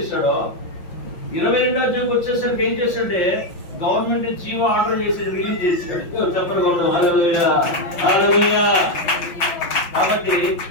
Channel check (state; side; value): late; right; 5.7 ms